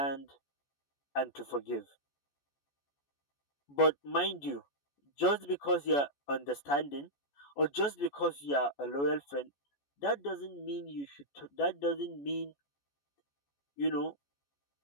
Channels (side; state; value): right; late; 14 ms